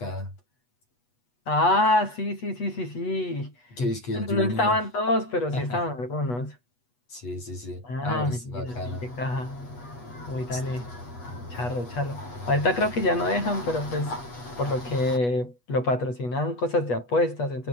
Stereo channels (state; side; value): late; right; 8.2 ms